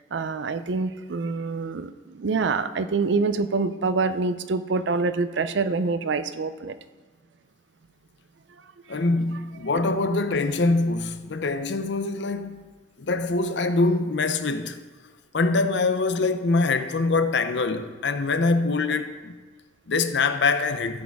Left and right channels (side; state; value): both; normal; correlation 0.29